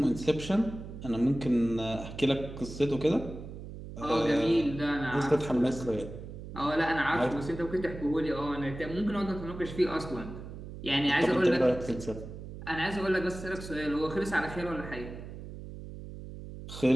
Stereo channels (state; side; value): noise; right; hum, 11 dB below the sound